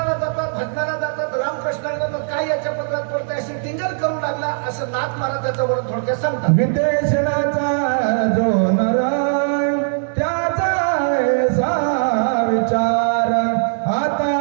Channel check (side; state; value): left; silent; 66 dB below the other